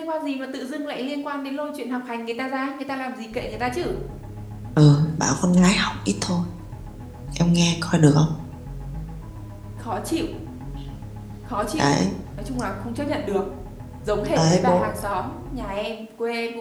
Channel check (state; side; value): identical; both; correlation 1.00